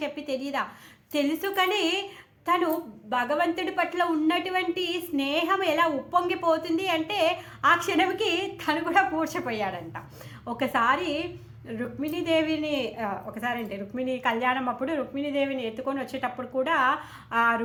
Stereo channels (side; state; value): both; identical; correlation 1.00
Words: చెప్పి తెలీదా? తెలుసు, కానీ తను భగవంతుడి పట్ల ఉన్నటువంటి స్నేహం ఎలా ఉప్పొంగిపోతుంది అంటే ఆ క్షణంకి తను కూడా మూర్ఛపోయాడంట. ఒకసారి రుక్మిణి కళ్యాణం అప్పుడు రుక్మిణీదేవిని ఎత్తుకొని వచ్చేటప్పుడు కూడా ఆ